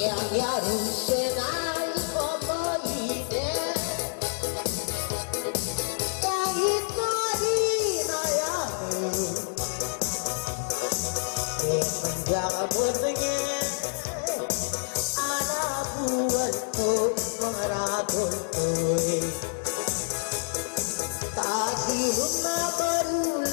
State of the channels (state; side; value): silent; right; digital silence